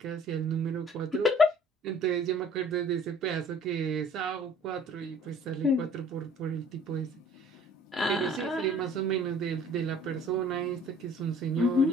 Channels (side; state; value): both; normal; correlation 0.53